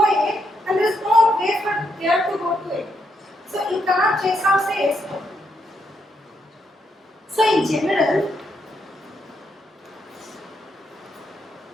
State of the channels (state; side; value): normal; both; correlation 0.78